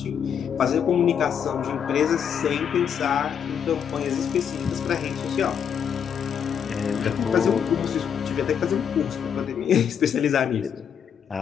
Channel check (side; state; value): right; quieter; 7.9 dB